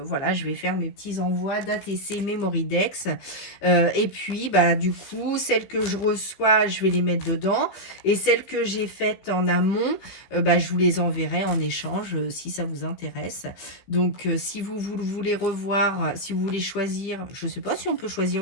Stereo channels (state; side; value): late; right; 15 ms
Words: je vais faire mes petits envois d'ATC Memoridex. Et puis, bah, du coup, celles que je reçois, je vais les mettre dedans. Et celles que j'ai faites en amont, bah, je vous les enverrai en échange si ça vous intéresse. Donc, si vous voulez revoir, si vous voulez choisir, je ne sais pas si on peut choisir